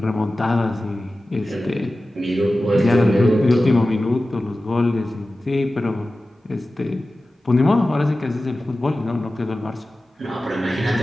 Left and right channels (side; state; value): both; normal; correlation 0.95